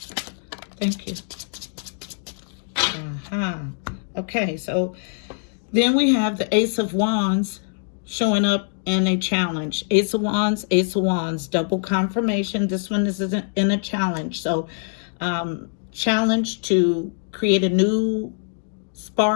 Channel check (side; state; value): right; silent; digital silence